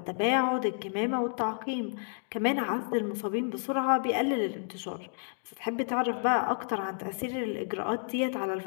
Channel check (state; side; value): silent; right; digital silence